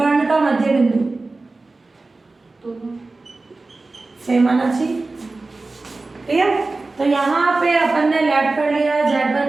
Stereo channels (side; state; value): left; quieter; 3.4 dB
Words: का मध्य बिंदु सेम आना चाहिए। ठीक है, तो यहाँ पे अपन ने लेट कर लिया,